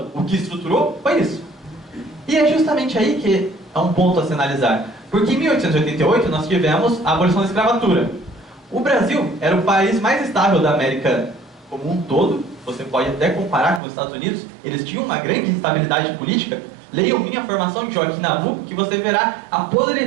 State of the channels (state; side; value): drops out; left; at 13.8 s